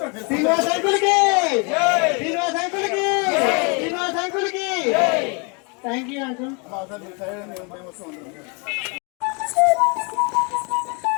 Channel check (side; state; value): right; quieter; 33.2 dB